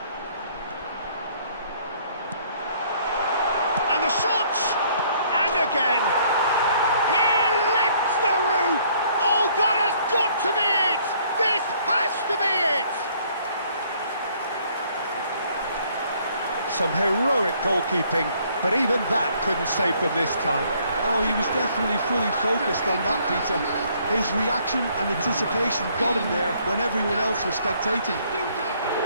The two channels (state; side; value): inverted; both; correlation -0.63